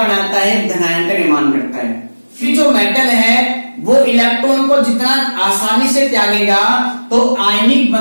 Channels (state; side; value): inverted; both; correlation -1.00